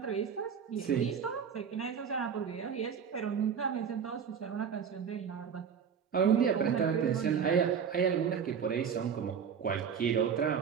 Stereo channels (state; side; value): quieter; left; 7.2 dB